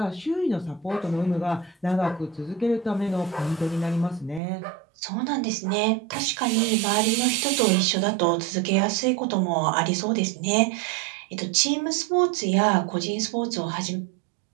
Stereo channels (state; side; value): drops out; left; at 4.4 s